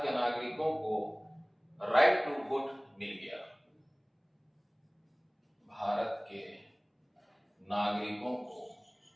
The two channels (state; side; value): identical; both; correlation 1.00